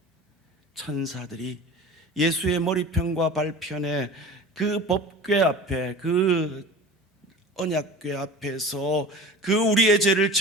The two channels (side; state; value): both; normal; correlation 0.37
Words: 천사들이 예수의 머리편과 발편에 그 법궤 앞에, 그 언약궤 앞에서 그 우리의 죄를